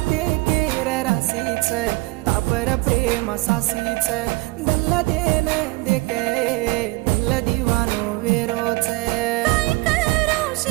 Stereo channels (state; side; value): quieter; left; 23.1 dB